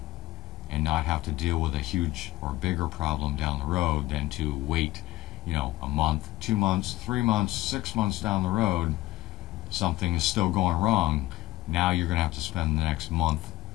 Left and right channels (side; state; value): right; quieter; 16.9 dB